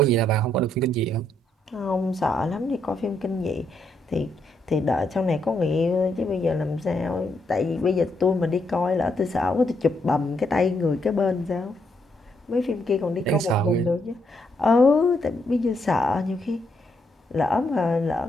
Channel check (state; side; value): normal; both; correlation 0.76